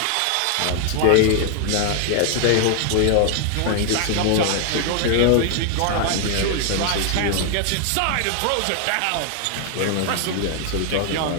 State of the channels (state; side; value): different; both; correlation 0.00